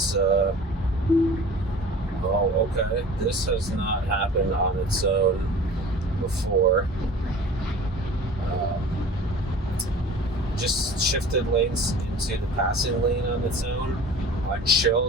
Oh, okay. This has not happened on its own before. Just shifted lanes into the passing lane on its own. On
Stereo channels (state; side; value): normal; both; correlation 0.43